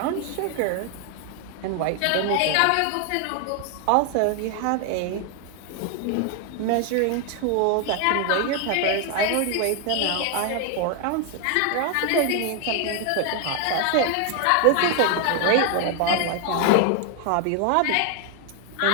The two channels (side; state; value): both; different; correlation 0.00